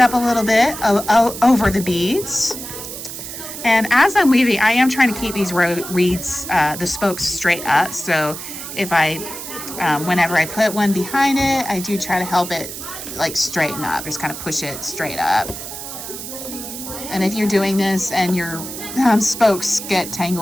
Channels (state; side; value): noise; right; hiss, 9 dB below the sound